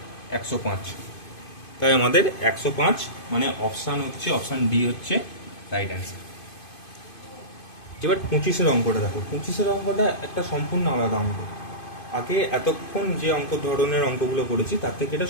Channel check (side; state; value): right; late; 2.5 ms